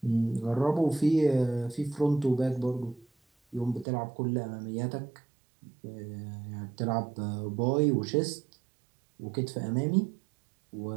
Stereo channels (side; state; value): left; drops out; at 3.9 s